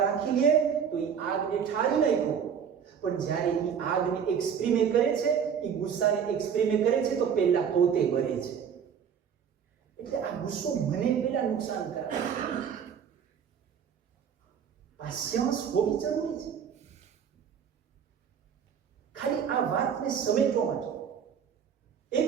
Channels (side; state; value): left; quieter; 7.6 dB